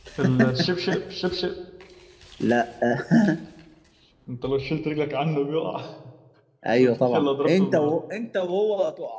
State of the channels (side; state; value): both; identical; correlation 1.00